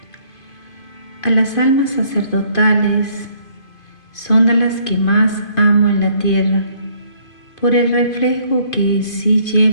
A las almas sacerdotales son a las que más amo en la tierra, por el reflejo que sí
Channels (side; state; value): right; late; 2.5 ms